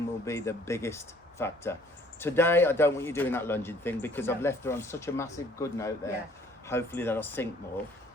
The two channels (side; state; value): both; normal; correlation 0.58